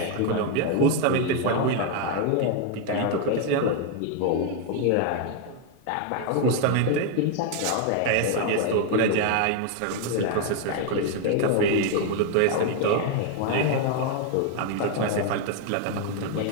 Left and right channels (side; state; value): both; different; correlation 0.01